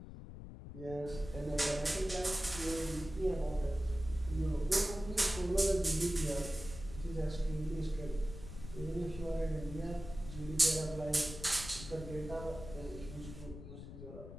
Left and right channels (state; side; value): noise; left; rumble, 12 dB below the sound